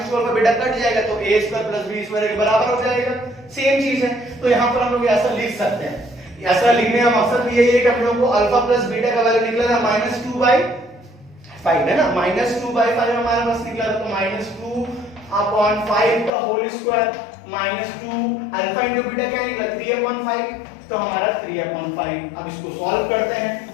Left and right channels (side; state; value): right; drops out; at 16.3 s